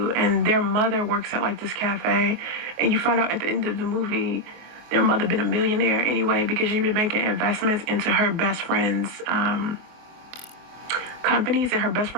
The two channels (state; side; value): late; left; 24 ms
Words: and their mother works at like this cafe, and you find out at the end of the movie their mother been a millionaire anyway because she'd been making investments into her best friend's companies, and her best